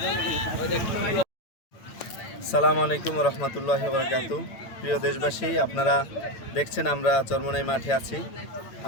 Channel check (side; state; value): right; late; 8.9 ms